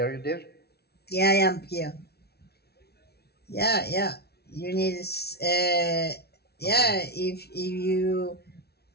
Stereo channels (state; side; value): late; right; 0.47 ms